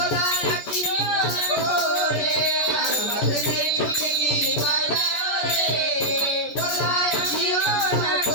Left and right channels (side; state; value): right; late; 14 ms